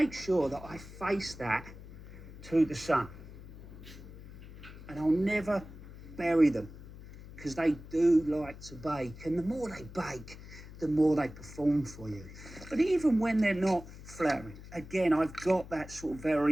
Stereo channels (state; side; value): noise; left; hum, 15 dB below the sound